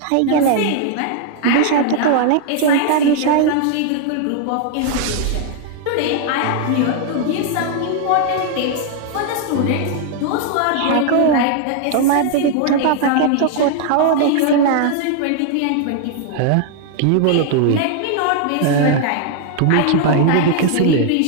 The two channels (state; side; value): different; both; correlation 0.00